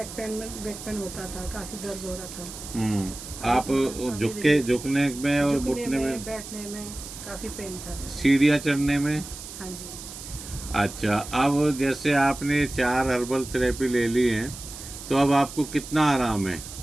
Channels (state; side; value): noise; right; hiss, 12 dB below the sound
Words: पेन होता था, काफी दर्द हो रहा था। आप झुकने में और घुटने में, बैठने में काफी पेन था। सीढ़ियाँ चढ़ने में? हाँ जी। अच्छा, अब जैसे आपने 4 हर्बल थेरेपी ले ली है तो अब आपको कितना आराम है?